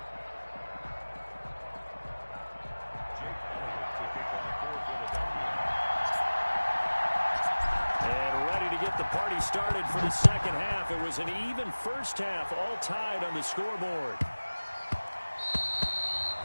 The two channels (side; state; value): both; inverted; correlation -1.00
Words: And ready to get the party started for the second half. It was an even first half, all tied on the scoreboard.